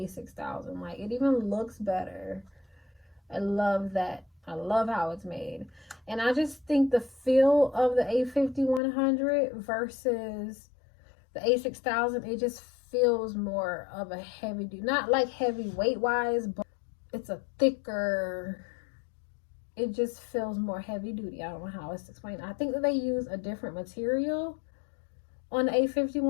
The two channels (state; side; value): drops out; right; at 8.8 s